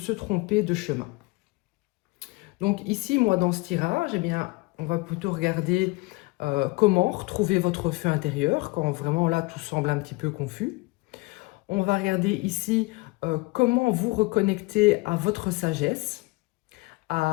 tromper de chemin. Donc ici, moi, dans ce tirage, on va plutôt regarder comment retrouver votre feu intérieur quand vraiment là, tout semble un petit peu confus. On va regarder ici comment vous reconnecter à votre sagesse,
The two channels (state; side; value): quieter; right; 24.9 dB